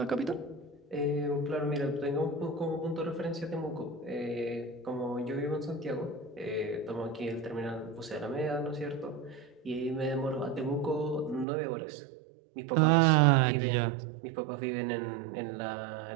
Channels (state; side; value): drops out; left; at 11.5 s